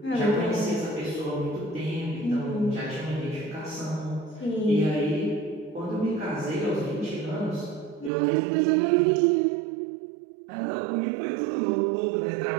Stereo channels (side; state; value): left; drops out; at 8.1 s